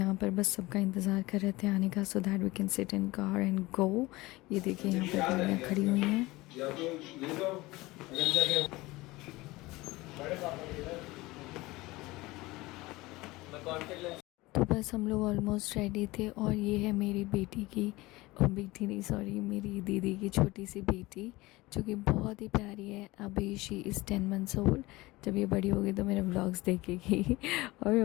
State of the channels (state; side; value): quieter; right; 20.6 dB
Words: पर बस सबका इंतज़ार कर रहे थे आने का, so that we can sit in car and go. ये देखिए यहाँ पर गाड़ियाँ खड़ी हुई हैं। तो बस हम लोग ऑलमोस्ट रेडी थे। और ये है मेरी बेटी की, बेटी नहीं सॉरी, मेरी दीदी की छोटी सी बेटी, जो कि बहुत ही प्यारी है। अभी शी इज़ 10 मंथ्स ओल्ड। जब ये बड़ी होगी तो मेरे व्लॉग्स देखेगी और